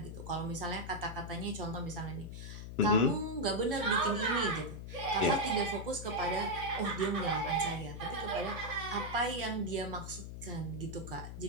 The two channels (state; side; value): noise; left; hum, 9 dB below the sound